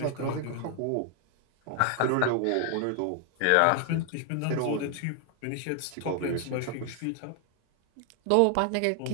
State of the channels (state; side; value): different; both; correlation 0.00